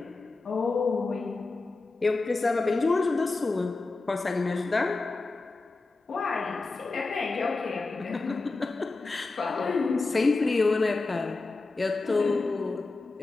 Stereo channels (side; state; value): right; quieter; 3.6 dB